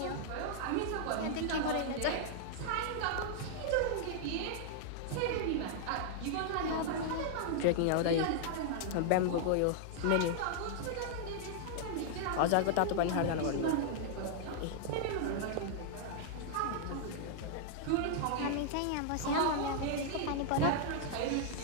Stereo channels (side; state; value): both; different; correlation -0.01